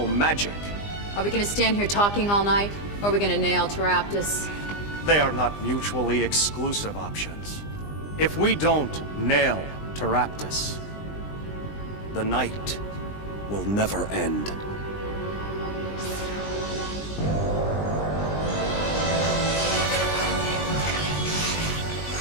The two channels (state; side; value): late; right; 20 ms